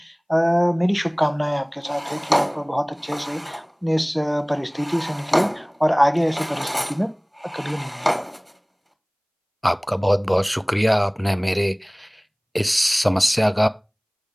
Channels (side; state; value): both; identical; correlation 1.00